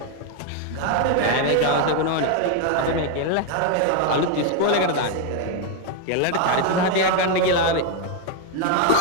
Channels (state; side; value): different; both; correlation 0.01